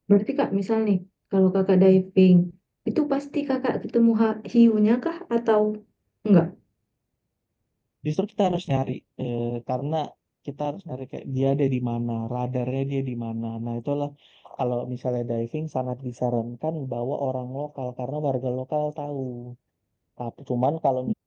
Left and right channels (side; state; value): both; identical; correlation 1.00